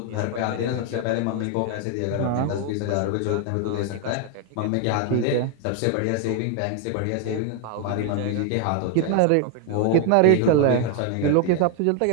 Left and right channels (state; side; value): different; both; correlation 0.00